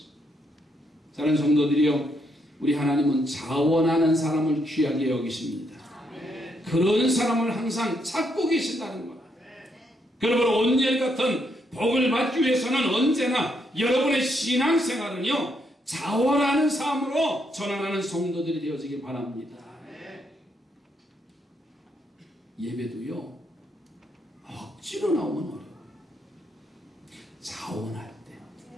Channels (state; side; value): normal; both; correlation 0.76